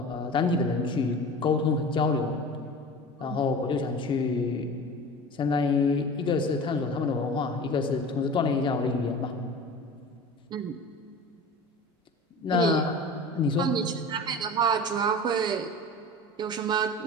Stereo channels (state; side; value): normal; both; correlation 0.36